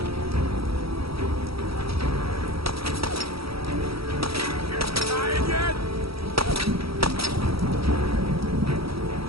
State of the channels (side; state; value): left; late; 0.76 ms